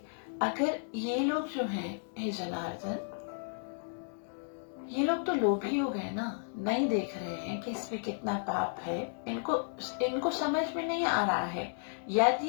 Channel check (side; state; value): right; silent; digital silence